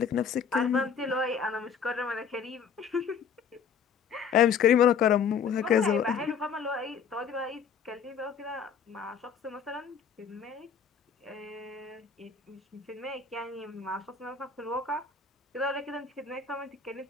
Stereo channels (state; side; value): quieter; right; 6.6 dB